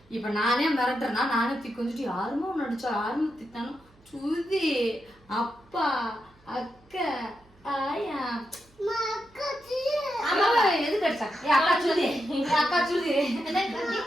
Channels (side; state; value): right; noise; hum, 30 dB below the sound